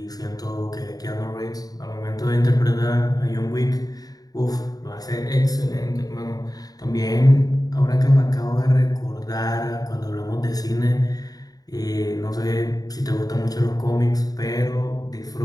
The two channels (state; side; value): late; right; 0.18 ms